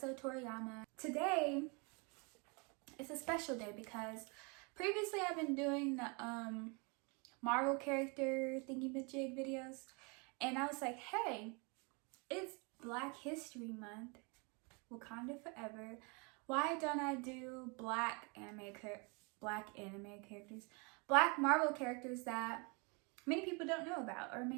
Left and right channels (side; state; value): left; quieter; 31.7 dB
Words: Today, it's a special day because previously I've been doing the Marvel character thingy-majig videos, and I was like, hey, it's Black History Month, Wakanda Forever. Why don't I do black anime characters, black Marvel characters that many people don't know about or may